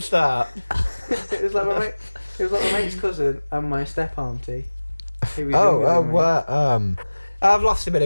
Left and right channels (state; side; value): inverted; both; correlation -1.00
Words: start. It was like my mate's cousin and my step auntie. Who was younger than me. Well, I've lost a bit